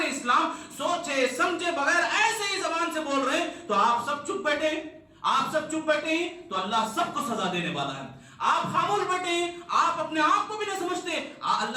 اسلام سوچے سمجھے بغیر ایسے ہی زبان سے بول رہے ہیں. تو آپ سب چپ بیٹھے ہیں تو اللہ سب کو سزا دینے والا ہے. آپ خاموش بیٹھے ہیں، آپ اپنے آپ کو بھی نہیں سمجھتے.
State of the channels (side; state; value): both; identical; correlation 1.00